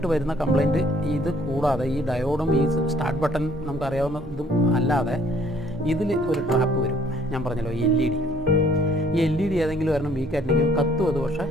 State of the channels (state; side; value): normal; both; correlation 0.61